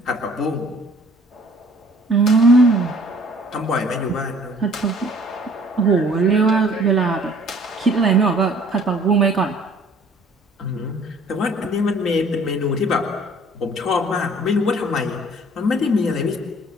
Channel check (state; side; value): normal; both; correlation 0.54